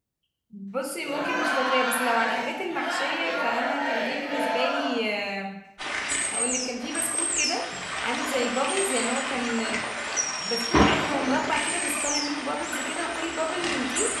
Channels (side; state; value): both; identical; correlation 1.00